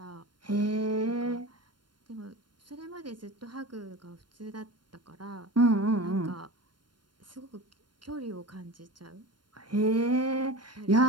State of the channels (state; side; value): late; left; 0.72 ms